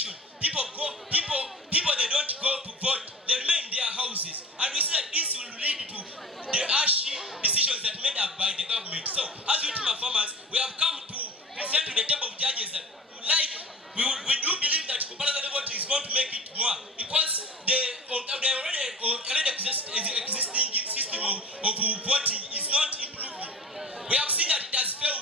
people they don't go to vote, they remain in their houses. And we see that this will lead to the harsh decisions that made up by the government. So, as we team of farmers, we have come to present to the table of judges that we do believe that compulsory voting is going to make it more because the already existing system of voting is not improving. We have seen that it has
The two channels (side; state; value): both; normal; correlation 0.36